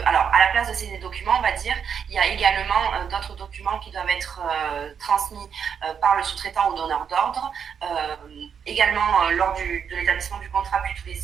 Alors, à la place de ces documents, on va dire, il y a également d'autres documents qui doivent être transmis par le sous-traitant au donneur d'ordre, également lors de l'établissement du contrat, puis tous les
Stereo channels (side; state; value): left; quieter; 7.3 dB